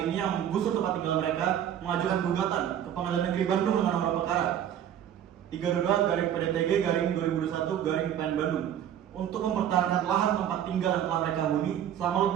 ini yang menggusur tempat tinggal mereka mengajukan gugatan ke Pengadilan Negeri Bandung dengan nomor perkara 32/PDTG/2021/PN Bandung untuk mempertahankan lahan tempat tinggal yang telah mereka huni selama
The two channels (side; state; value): left; quieter; 10.1 dB